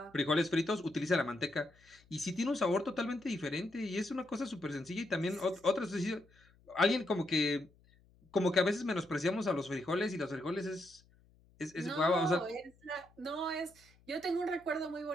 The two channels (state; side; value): noise; left; hum, 30 dB below the sound